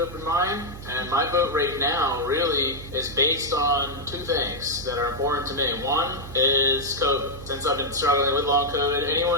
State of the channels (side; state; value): right; noise; hum, 13 dB below the sound